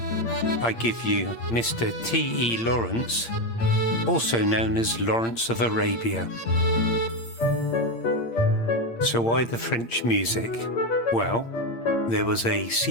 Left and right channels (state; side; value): late; right; 8.7 ms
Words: I give you Mr. T.E. Lawrence, also known as Lawrence of Arabia. So why the French music? Well, there was a